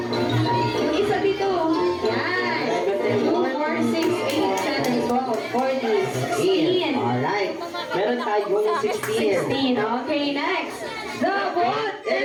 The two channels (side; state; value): both; identical; correlation 1.00